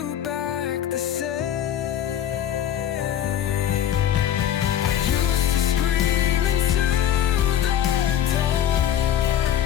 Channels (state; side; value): quieter; right; 10.5 dB